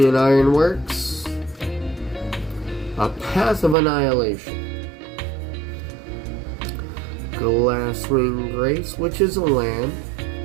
Ironworks, a Path of Annihilation, Glasswing Grace, which is a land,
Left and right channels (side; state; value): left; drops out; at 3.8 s